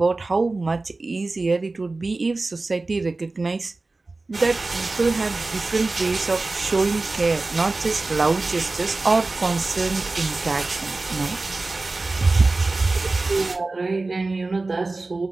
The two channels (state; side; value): quieter; left; 3.3 dB